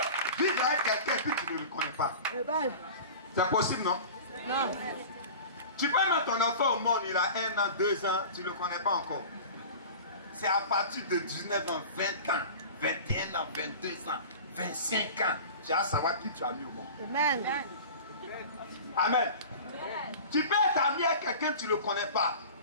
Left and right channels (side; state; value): both; inverted; correlation -0.37